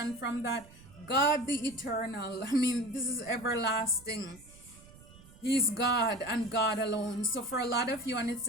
from that. God the eternal. I mean, this is everlasting. He's God and God alone. So for a lot of you, and it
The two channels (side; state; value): right; noise; rumble, 22 dB below the sound